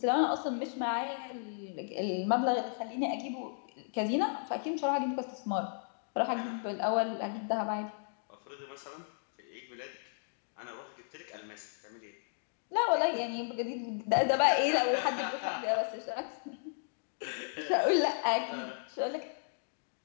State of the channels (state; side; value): silent; right; digital silence